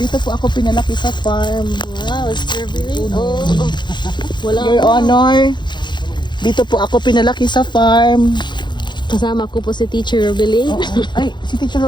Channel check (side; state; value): right; late; 0.22 ms